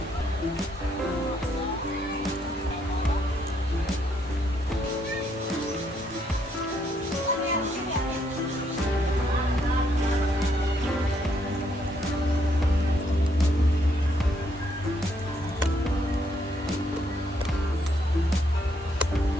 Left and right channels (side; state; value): both; normal; correlation 0.73